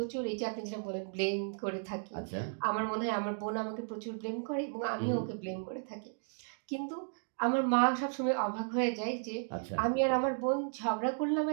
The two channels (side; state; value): left; silent; digital silence